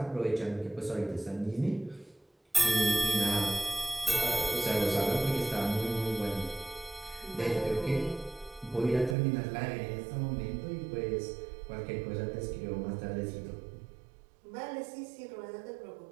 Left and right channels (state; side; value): drops out; left; at 9.2 s